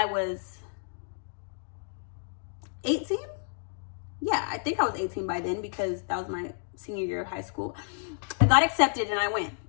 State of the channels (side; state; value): right; silent; digital silence